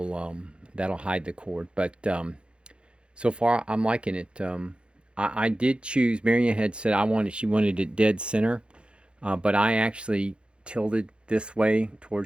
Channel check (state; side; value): late; left; 0.056 ms